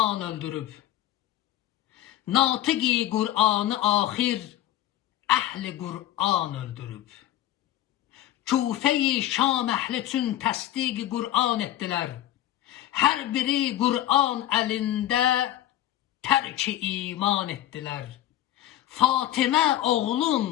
öldürüb. Natiqi Qur'anı axir əhli Qur'an öldürüb. Küfə-i Şam əhli üçün təsdiq Qur'an etdilər. Hər biri Qur'an əlində tərk-i iman etdilər. Fatimə oğlun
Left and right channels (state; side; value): quieter; right; 13.3 dB